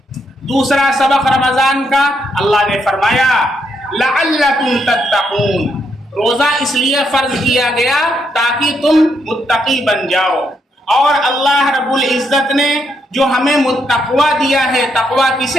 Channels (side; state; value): both; normal; correlation 0.77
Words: دوسرا سبق رمضان کا اللہ نے فرمایا لعلکم تتقون، روزہ اس لیے فرض کیا گیا تاکہ تم متقی بن جاؤ۔ اور اللہ رب العزت نے جو ہمیں متقوی دیا ہے، تقوی